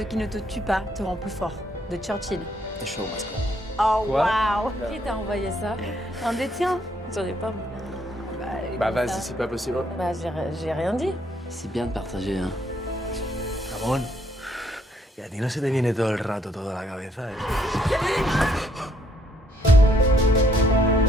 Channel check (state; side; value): normal; both; correlation 0.69